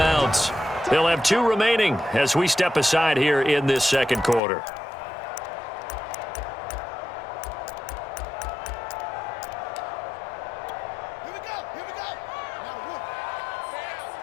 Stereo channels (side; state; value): right; drops out; at 4.4 s